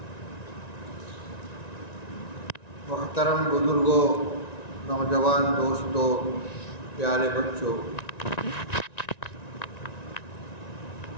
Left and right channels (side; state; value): right; late; 1.9 ms